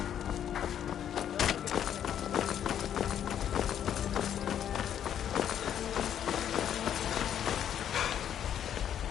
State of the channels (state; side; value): quieter; right; 9.7 dB